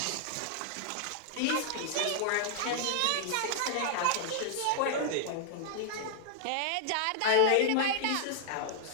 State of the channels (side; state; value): both; different; correlation 0.00